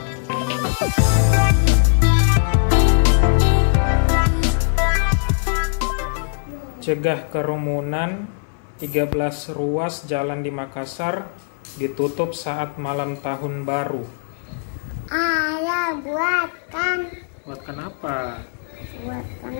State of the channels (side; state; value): right; silent; 65 dB below the other